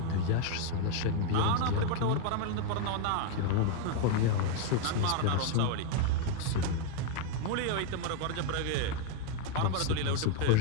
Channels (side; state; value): both; different; correlation 0.01